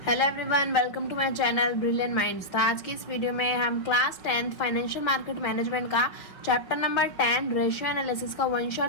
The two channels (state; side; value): late; right; 5.6 ms